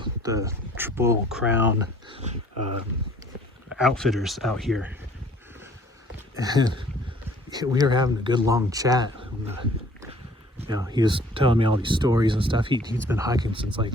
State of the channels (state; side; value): normal; both; correlation 0.55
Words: the Triple Crown outfitters out here. And we were having a good long chat. And, you know, he was telling me all these stories and stuff. He's been hiking since